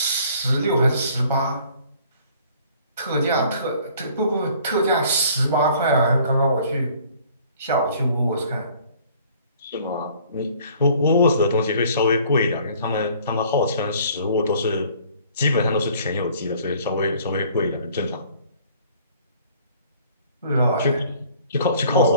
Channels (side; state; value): both; inverted; correlation -0.55